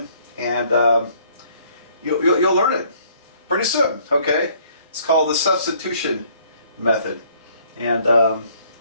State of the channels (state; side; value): inverted; both; correlation -0.61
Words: and you'll learn it pretty soon, okay? It's called the substitution method. And,